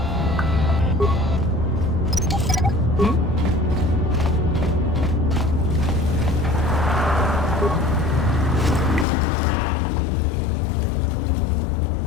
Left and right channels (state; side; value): drops out; right; at 9.1 s